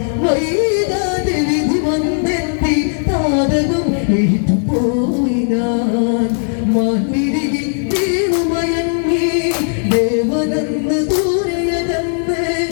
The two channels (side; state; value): right; silent; 64 dB below the other